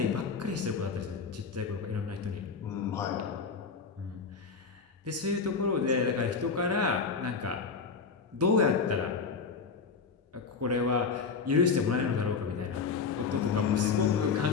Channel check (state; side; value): quieter; right; 5.2 dB